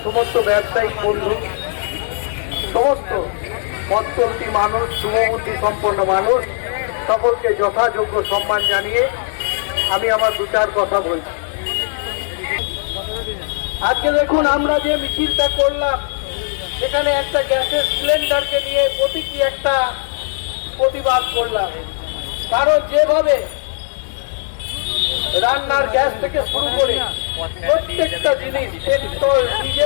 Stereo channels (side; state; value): right; silent; digital silence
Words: সমস্ত ব্যবসায়িক বন্ধু, সমস্ত পথ চলতি মানুষ, শুভবুদ্ধি সম্পন্ন মানুষ সকলকে যথাযোগ্য সম্মান জানিয়ে আমি আমার দু চার কথা বলছি। আজকে দেখুন, আমরা যে মিছিলটা করলাম সেখানে একটা গ্যাসের সিলিন্ডারকে নিয়ে প্রতীকী একটা প্রতিবাদ করলাম। কারণ যেভাবে রান্নার গ্যাস থেকে শুরু করে প্রত্যেকটা জিনিস, পেট্রোল